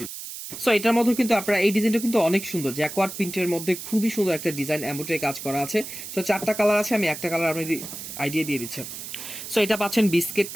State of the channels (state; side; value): noise; right; hiss, 10 dB below the sound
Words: সো এটার মধ্যে কিন্তু আপনারা এই ডিজাইনটা কিন্তু অনেক সুন্দর, জ্যাকওয়ার্ড প্রিন্টের মধ্যে খুবই সুন্দর একটা ডিজাইন, এমব্রয়ডারি কাজ করা আছে। সো 4টা কালার আছে, আমি একটা কালার আপনি আইডিয়া দিয়ে দিচ্ছেন। সো এটা পাচ্ছেন বিস্কিট